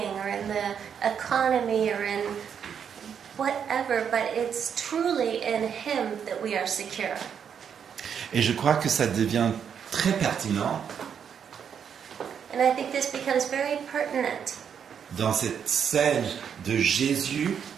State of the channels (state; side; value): quieter; left; 7.7 dB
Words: or in the economy or in whatever, but it's truly in Him that we are secure. Et je crois que ça devient très pertinent And I think this becomes very pertinent dans cette scène de Jésus